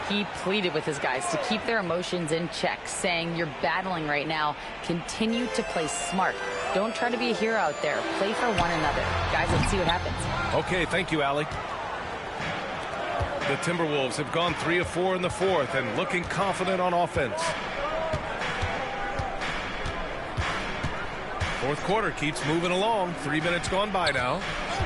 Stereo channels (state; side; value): identical; both; correlation 1.00